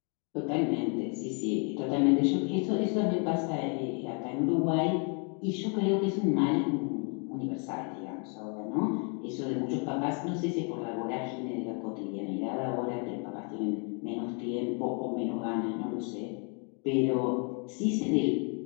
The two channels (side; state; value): right; quieter; 37.9 dB